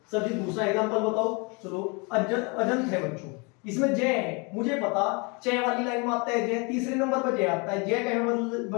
सर जी दूसरा एग्जांपल बताओ। चलो अजंत है बच्चों, इसमें जय है, मुझे पता चे वाली लाइन में आता है जय, तीसरे नंबर पर जय आता है, जय कहे में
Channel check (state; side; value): quieter; right; 30.8 dB